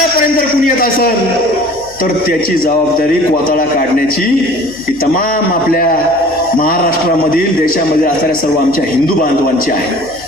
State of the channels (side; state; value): left; noise; hum, 24 dB below the sound